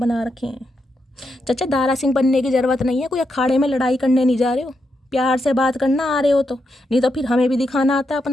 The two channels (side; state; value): both; normal; correlation 0.83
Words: रखे हैं। चाचा दारा सिंह बनने की ज़रूरत नहीं है, कोई अखाड़े में लड़ाई करने नहीं जा रहे हो, प्यार से बात करना आ रहे हो तो, नहीं तो फिर हमें भी दिखाना आता है